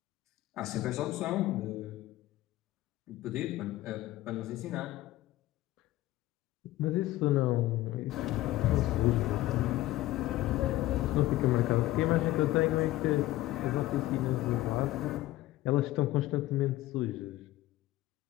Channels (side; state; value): right; quieter; 16.3 dB